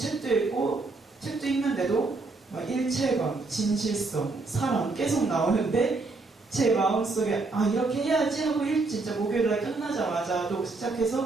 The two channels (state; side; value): quieter; left; 3.6 dB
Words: 읽고 책도 읽는데도 일체감, 진실성, 사랑 계속 나오는데 제 마음속에 이렇게 해야지 하고 진짜 목요일날 끝나자마자도